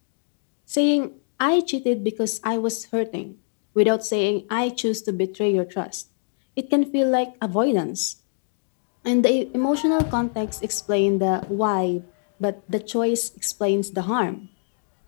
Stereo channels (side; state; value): right; silent; digital silence